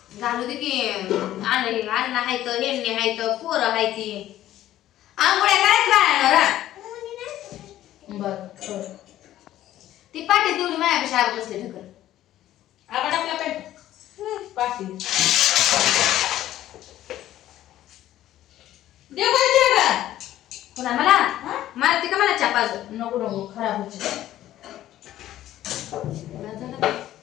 घालू दे की अन्न हायत हेंडणी हायत पोरं हायती आंघोळ्या करायच बाळांना बर ती पाठी तेवढी माझ्यापेक्षा आग बसले ठकर आपण आपला पेट पाठी देव पाहिजे का पुन्हा मला मारते का मला चापाज नको नको खराब होते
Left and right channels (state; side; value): quieter; right; 13.4 dB